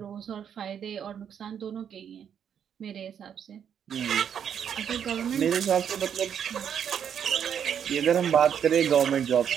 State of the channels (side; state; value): left; quieter; 8.4 dB